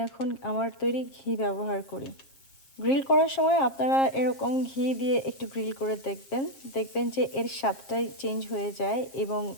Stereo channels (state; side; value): late; right; 7.5 ms